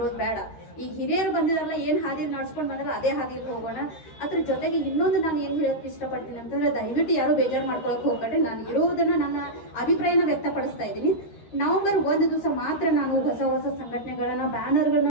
ಬೇಡ. ಈಗ ಹಿರಿಯರು ಬಂದಿದಾರಲ್ಲ, ಏನ್ ಹಾದಿ ನಡ್ಸ್ಕೊಂಡ್ ಬಂದ್ರೆ ಅದೇ ಹಾದಿಯಲ್ಲಿ ಹೋಗೋಣ. ಅದ್ರ ಜೊತೆಗೆ ಇನ್ನೊಂದು ನಾನು ಏನ್ ಹೇಳಕ್ ಇಷ್ಟಪಡ್ತೀನಿ ಅಂತಂದ್ರೆ, ದಯವಿಟ್ಟು ಯಾರು ಬೇಜಾರು ಮಾಡ್ಕೊಳಕ್ ಹೋಗ್ಬೇಡ್ರಿ. ನಾನು ಇರೋದನ್ನ ನನ್ನ ಅಭಿಪ್ರಾಯನ ವ್ಯಕ್ತಪಡಿಸ್ತಾ ಇದ್ದೀನಿ. ನವೆಂಬರ್ 1 ದಿವಸ ಮಾತ್ರ ನಾನು ಹೊಸ ಹೊಸ ಸಂಘಟನೆಗಳನ್ನ, ಬ್ಯಾನರ್ಗಳನ್ನ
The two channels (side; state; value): right; late; 13 ms